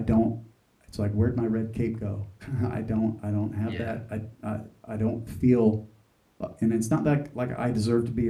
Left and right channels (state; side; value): identical; both; correlation 1.00